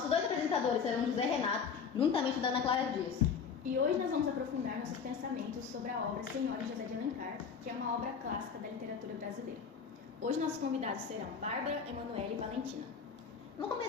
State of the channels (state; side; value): quieter; right; 6.2 dB